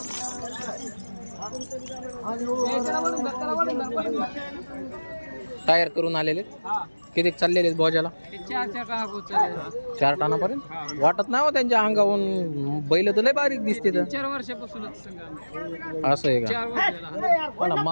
टायर करून आलेले. किती चाललेले भोजाला? 4 टनापर्यंत. वाटत नाही हो त्यांच्या अंगावरून. बैल तर लय बारीक दिसते. 4 वर्षापासूनच असं आहे का? मला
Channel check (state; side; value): inverted; both; correlation -1.00